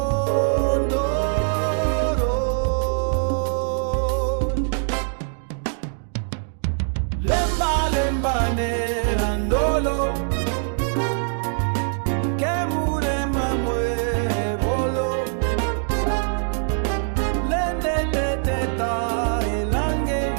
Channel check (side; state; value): left; silent; digital silence